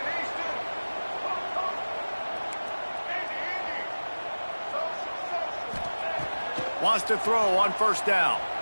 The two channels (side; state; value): both; inverted; correlation -1.00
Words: Wants to throw on first down.